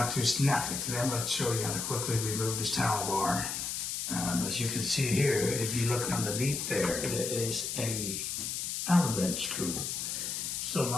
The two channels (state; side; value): noise; left; hiss, 3 dB below the sound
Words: to Snapfix. Today I'm going to show you how to quickly remove this towel bar. As you can see here, if you look underneath there, there is a Allen wrench screw. So